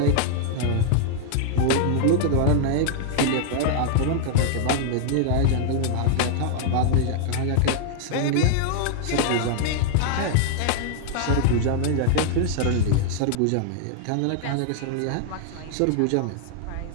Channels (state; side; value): different; both; correlation 0.00